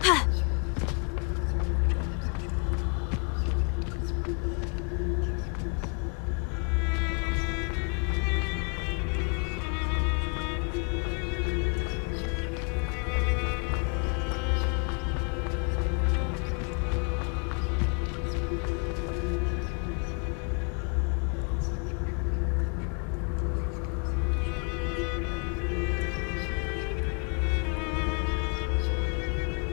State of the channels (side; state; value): right; quieter; 37.3 dB